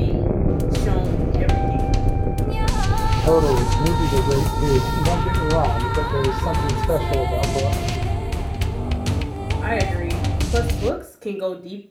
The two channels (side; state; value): both; identical; correlation 1.00